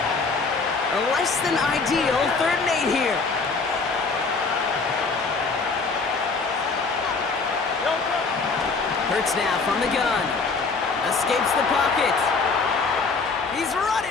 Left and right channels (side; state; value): right; quieter; 4.4 dB